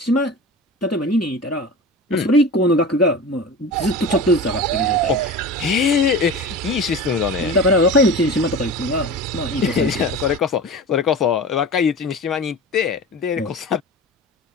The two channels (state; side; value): normal; both; correlation 0.32